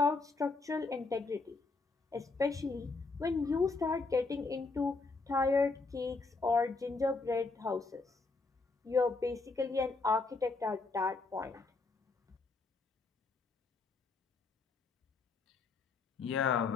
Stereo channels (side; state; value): right; quieter; 3.9 dB